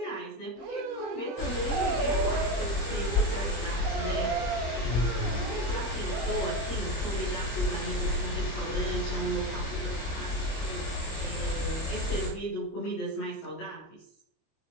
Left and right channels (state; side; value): late; right; 25 ms